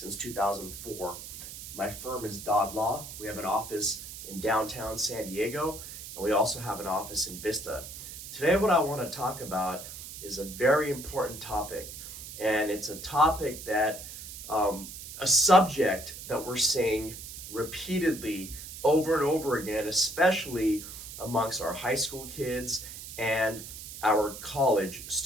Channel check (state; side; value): noise; right; hiss, 11 dB below the sound